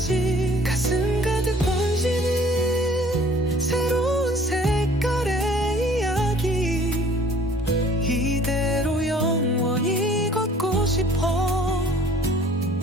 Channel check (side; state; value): both; normal; correlation 0.54